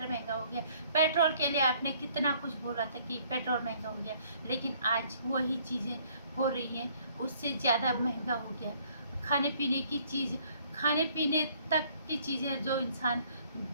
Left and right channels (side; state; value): both; inverted; correlation -0.61